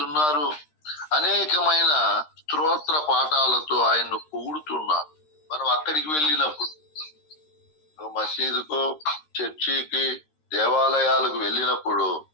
అనేకమైన స్తోత్ర పాఠాలతో ఆయన్ను పొగుడుతున్నారు. మనం అక్కడికి వెళ్ళినప్పుడు, మసీదుకు, చర్చికి, దేవాలయాలకు వెళ్ళినప్పుడు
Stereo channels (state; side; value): late; right; 13 ms